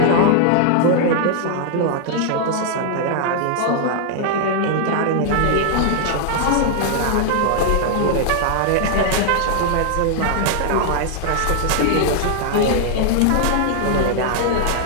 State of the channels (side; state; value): both; different; correlation 0.00